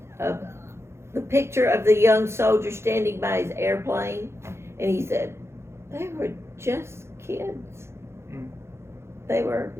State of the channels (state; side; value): late; left; 0.13 ms